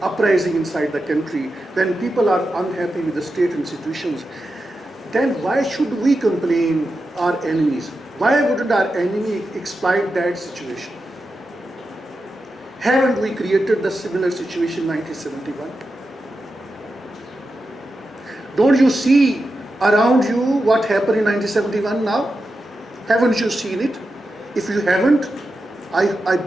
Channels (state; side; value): normal; both; correlation 0.90